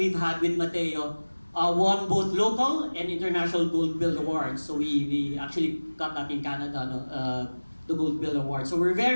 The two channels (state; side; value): inverted; both; correlation -1.00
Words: had with Mateo won both local and international Gold Bill Awards. So we actually got that in Canada, no? The Gold Bill Award. So we're